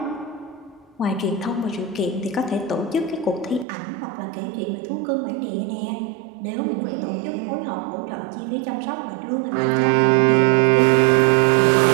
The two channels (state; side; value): drops out; left; at 3.7 s